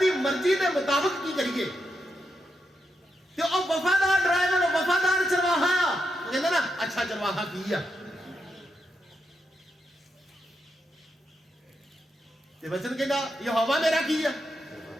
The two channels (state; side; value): normal; both; correlation 0.84